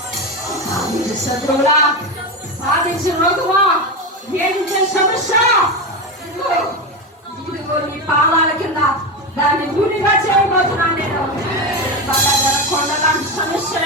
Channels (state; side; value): normal; both; correlation 0.17